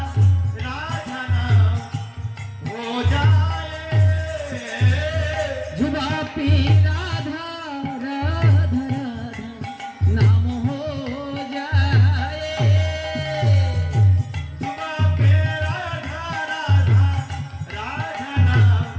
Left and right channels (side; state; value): both; identical; correlation 1.00